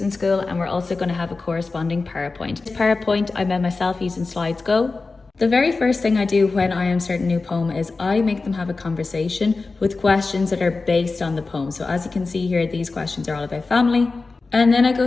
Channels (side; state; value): right; quieter; 3.9 dB